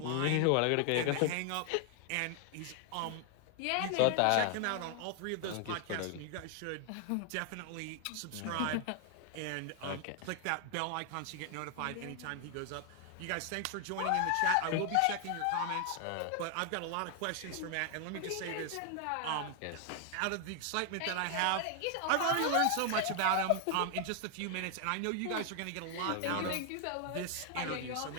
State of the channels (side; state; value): both; different; correlation 0.00